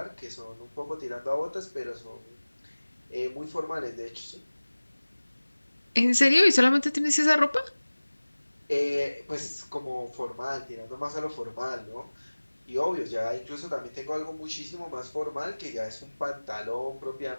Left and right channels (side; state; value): both; inverted; correlation -1.00